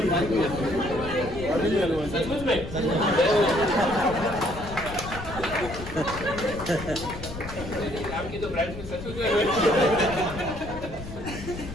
सचमुच में? आपकी तो ब्रांच में सचमुच में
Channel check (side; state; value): left; noise; rumble, 11 dB below the sound